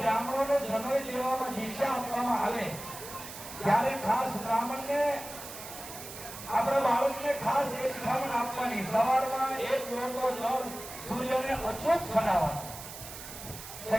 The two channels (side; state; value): right; noise; hiss, 12 dB below the sound